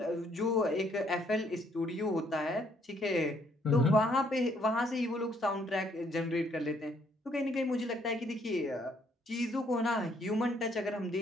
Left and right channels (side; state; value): both; normal; correlation 0.67